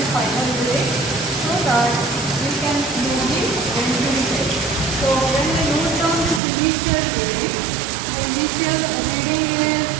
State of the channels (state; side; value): drops out; left; at 6.4 s